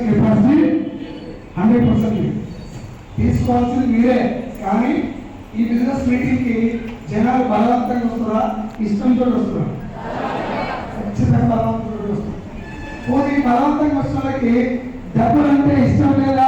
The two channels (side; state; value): both; identical; correlation 1.00